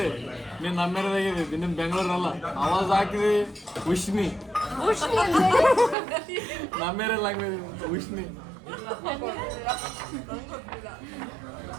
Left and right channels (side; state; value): left; drops out; at 6.0 s